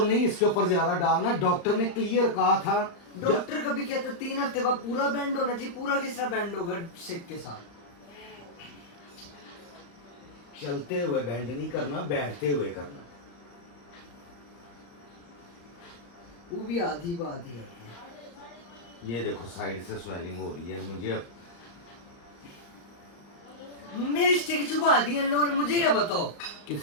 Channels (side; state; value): right; late; 35 ms